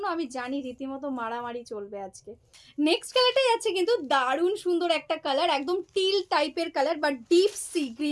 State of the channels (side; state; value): both; identical; correlation 1.00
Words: আমি জানি রীতিমতো মারামারি চলবে আজকে। নেক্সট কালারটাই আছে কিন্তু দারুণ সুন্দর একটা কালার, একদম টিল টাইপের কালার বা ডিপ সি